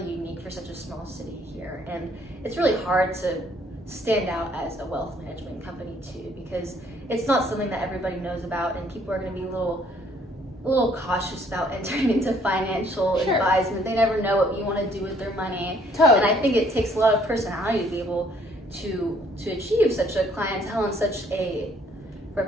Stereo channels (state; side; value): normal; both; correlation 0.64